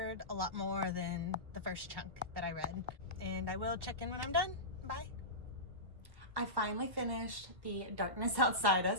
a lot more than the first chunk that I read, and I will check in when I'm done. Bye. I finally finished The Darkness Outside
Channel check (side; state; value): left; late; 1.2 ms